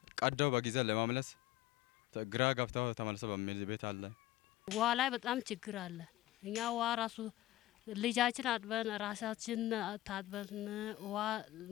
ቀደው በጊዜ ለማምለስ ግራ ገብታው ተመልሰው በሚል ቤት አለ። ውሃ ላይ በጣም ችግር አለ። እኛ ውሃ ራሱ ልጃችን አጥበን ራሳችን ታጥበን ውሃ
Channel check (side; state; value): right; quieter; 16.0 dB